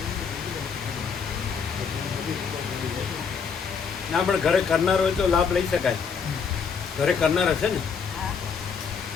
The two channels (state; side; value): quieter; right; 6.2 dB